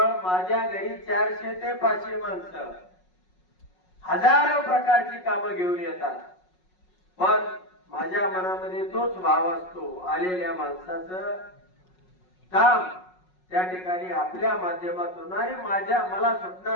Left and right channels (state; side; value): late; right; 5.5 ms